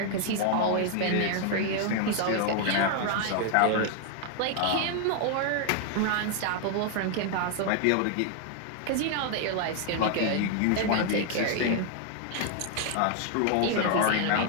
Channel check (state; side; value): different; both; correlation 0.00